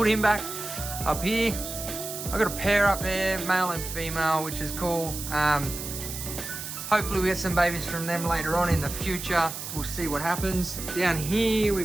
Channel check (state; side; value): noise; right; hiss, 8 dB below the sound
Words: him back up here. I've got a pair up there, male and female, which is cool. Hopefully we get some babies from them later on in the future. We'll see what happens. Down here